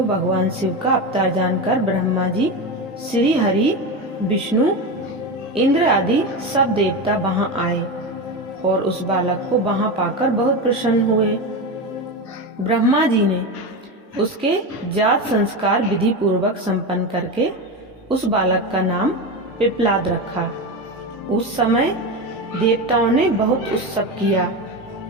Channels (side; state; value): both; normal; correlation 0.19